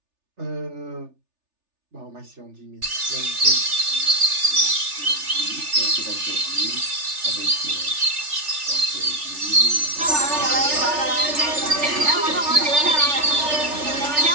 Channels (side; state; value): left; late; 3.4 ms